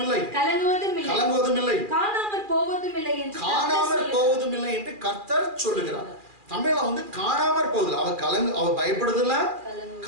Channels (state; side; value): late; left; 2.4 ms